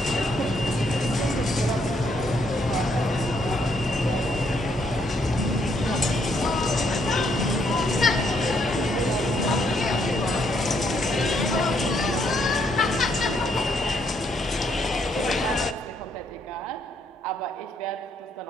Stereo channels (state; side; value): normal; both; correlation 0.72